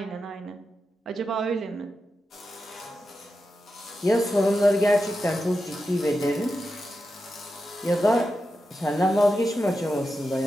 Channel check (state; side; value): normal; both; correlation 0.90